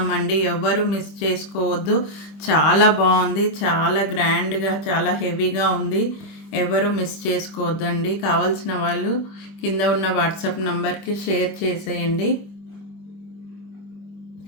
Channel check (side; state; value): right; late; 25 ms